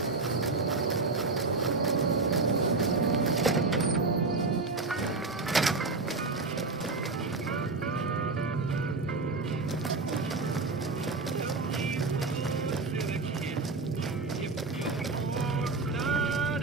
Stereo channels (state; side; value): quieter; left; 3.7 dB